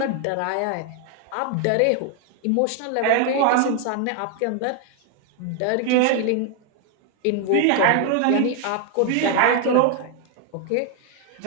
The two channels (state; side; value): different; both; correlation 0.00